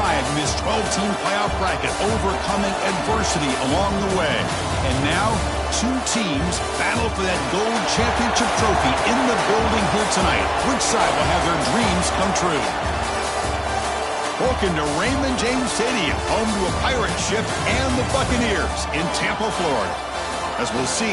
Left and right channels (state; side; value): identical; both; correlation 1.00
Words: in this 12-team playoff bracket, overcoming adversity along the way. And now, two teams battle for that gold championship trophy in the building here tonight. Which side will have their dreams come true? Welcome to Raymond James Stadium, home to a pirate ship and the Buccaneers in Tampa, Florida. As we'll